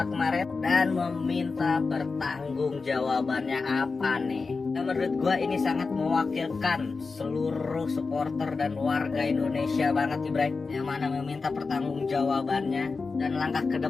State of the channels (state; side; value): quieter; right; 4.3 dB